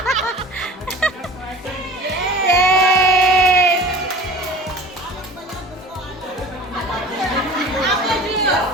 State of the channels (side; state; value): both; normal; correlation 0.41